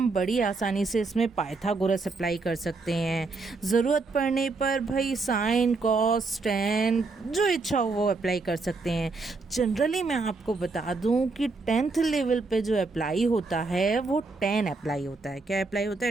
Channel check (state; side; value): quieter; left; 3.8 dB